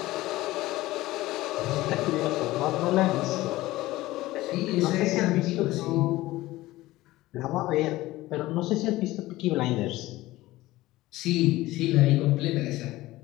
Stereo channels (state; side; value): quieter; right; 17.7 dB